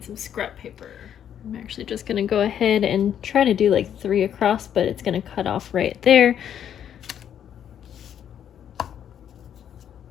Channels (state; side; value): quieter; right; 9.5 dB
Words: some scrap paper. I'm actually just going to go ahead and try to do like 3 across, but it's going to cut off right there.